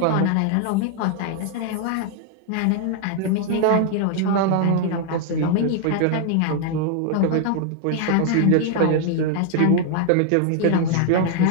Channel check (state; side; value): different; both; correlation 0.00